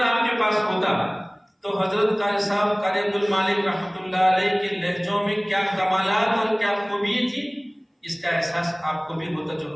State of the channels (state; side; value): identical; both; correlation 1.00